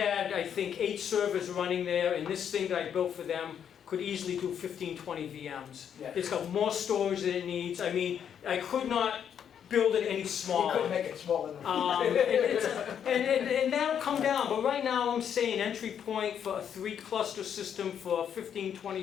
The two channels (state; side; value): quieter; right; 8.5 dB